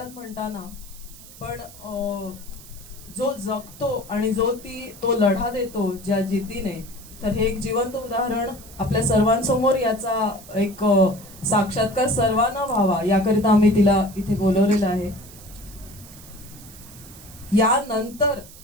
म्हणताना पण जो जगतो आणि जो तो लढा देतो ज्या जिद्दीने तर हे एक जिवंत उदाहरण आपल्या सर्वांसमोर याचा एक साक्षात्कार सर्वांना व्हावा याकरिता आम्ही तिला इथे बोलवलेलं आहे. यानंतर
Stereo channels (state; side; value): noise; right; hiss, 19 dB below the sound